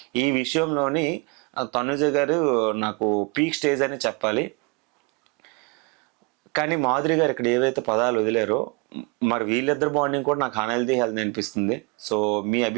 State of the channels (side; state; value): left; quieter; 29.0 dB